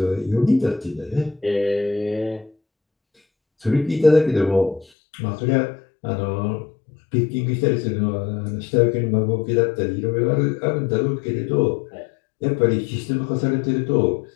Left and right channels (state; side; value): drops out; right; at 4.9 s